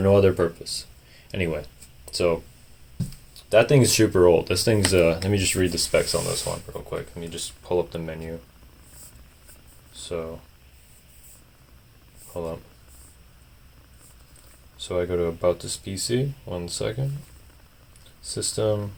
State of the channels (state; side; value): identical; both; correlation 1.00